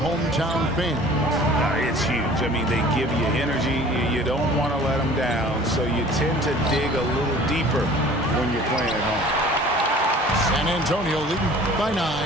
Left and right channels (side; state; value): both; normal; correlation 0.47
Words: fan? It's huge. I mean, they give you energy. You don't want to let them down, so you tend to dig a little deeper when you're playing at home. San Antonio leading by